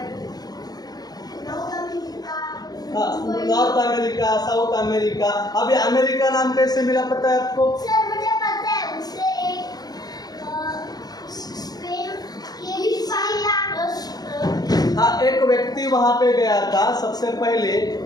हाँ, नॉर्थ अमेरिका, साउथ अमेरिका। अभी अमेरिका नाम कैसे मिला पता है आपको? सर मुझे पता है, उससे एक स्पेन के हाँ, एक व्यक्ति वहां पे गया था सबसे पहले,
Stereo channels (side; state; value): right; late; 0.19 ms